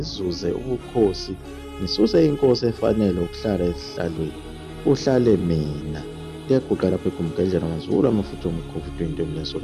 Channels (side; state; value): both; identical; correlation 1.00